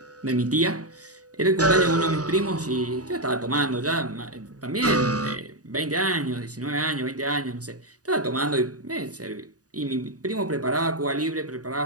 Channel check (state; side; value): late; left; 0.67 ms